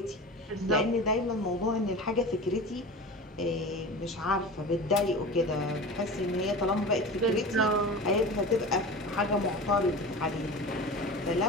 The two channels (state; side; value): normal; both; correlation 0.32